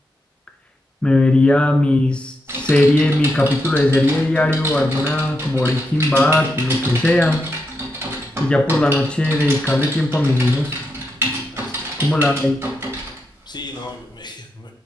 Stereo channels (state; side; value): normal; both; correlation 0.84